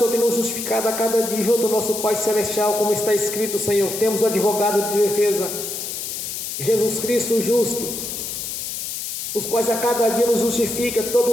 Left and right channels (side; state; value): left; noise; hiss, 5 dB below the sound